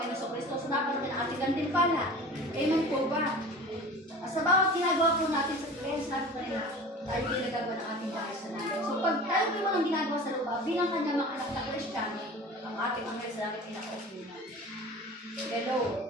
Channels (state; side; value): normal; both; correlation 0.38